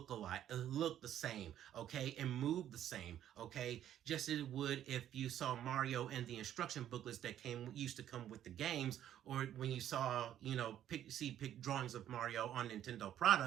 the same, okay, and move the same, okay, just as it would if you saw Mario and the instruction booklets that used to come with the games, or when you saw, pick drawings of Mario on Nintendo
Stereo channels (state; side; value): quieter; left; 11.1 dB